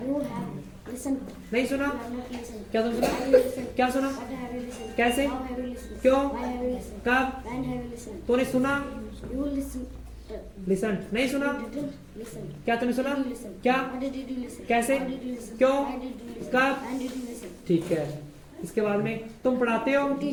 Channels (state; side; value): identical; both; correlation 1.00